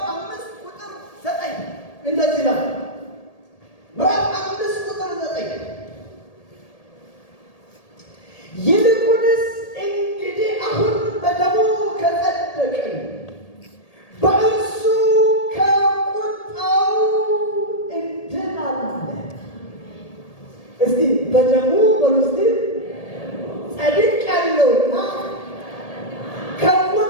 5 ቁጥር 9 እንደዚህ ነው። ምዕራፍ 5 ቁጥር 9 ይልቁንስ እንግዲህ አሁን በደሙ ከጸደቅን በእርሱ ከቁጣው እንድናለን። እስቲ በደሙ በሉ እስቲ ጸድቄአለሁና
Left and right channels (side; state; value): right; late; 1.8 ms